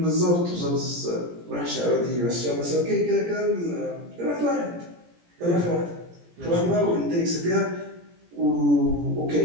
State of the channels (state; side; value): late; left; 17 ms